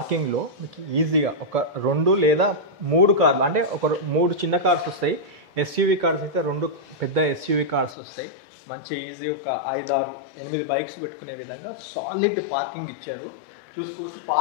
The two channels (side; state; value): right; drops out; at 8.0 s